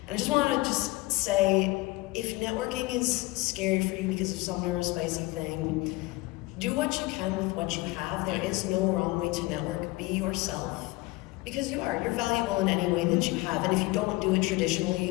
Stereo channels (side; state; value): right; quieter; 21.5 dB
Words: And I just want to just say, if networking is scary for you because of some neurospicy thing, do what you can with what you have. There is no wrong way to network. Be yourself. Because you are. You're valuable in any way that you have. And if you don't do it